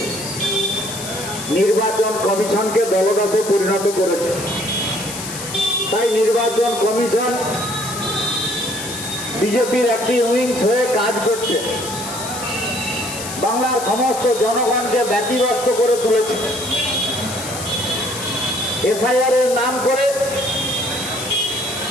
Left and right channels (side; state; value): left; noise; hiss, 9 dB below the sound